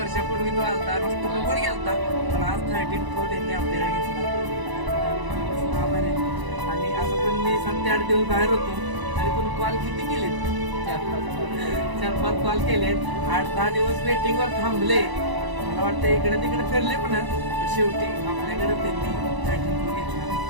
तो आलता, नुसतं बरोबर गेलता, पण आज 13 प्रो त्यांनी आपल्याकडे घेतला. आभार आहे. आणि असं पण मी 7-8 दिवस बाहेर होतो, तरी पण कॉल किती केलेत? 4-5 कॉल केलेत. 8-10 दिवस वेटिंगवर थांबले. मला वाटतं इकडे तिकडे फिरले पण शेवटी आपल्याकडे त्यांनी 13 प्रो घेतला.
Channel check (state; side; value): late; left; 1.0 ms